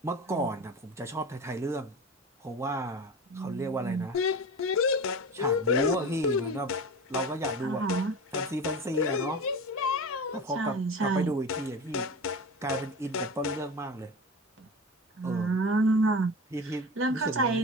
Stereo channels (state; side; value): normal; both; correlation 0.30